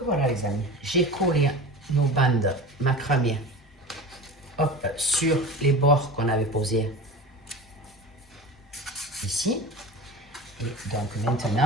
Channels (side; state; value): both; normal; correlation 0.32